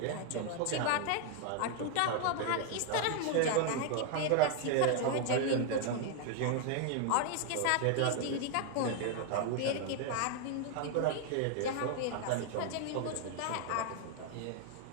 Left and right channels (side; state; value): both; different; correlation 0.00